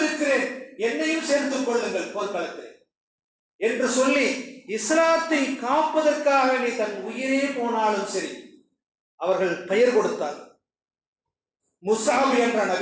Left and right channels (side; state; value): both; identical; correlation 1.00